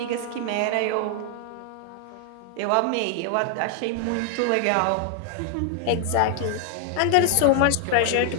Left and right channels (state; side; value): different; both; correlation 0.00